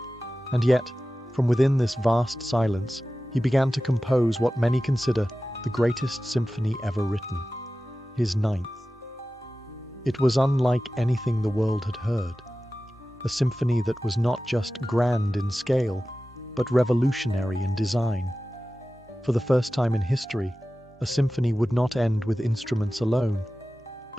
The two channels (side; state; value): both; normal; correlation 0.95